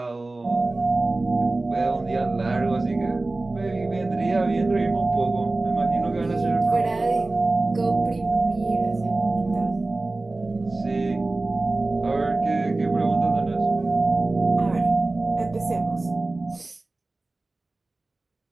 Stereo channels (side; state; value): left; quieter; 3.1 dB